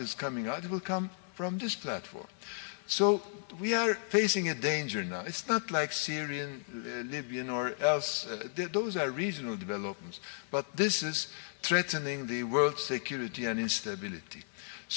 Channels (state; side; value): silent; right; 55 dB below the other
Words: coming out, it will come from this platform. So we are facing a danger now. It's not like Syrian, Libyan, or else. Those are regional developments. But this is threatening the world security and instability.